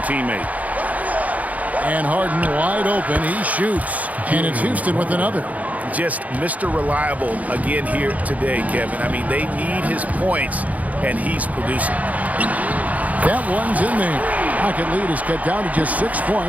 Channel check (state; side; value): late; left; 0.073 ms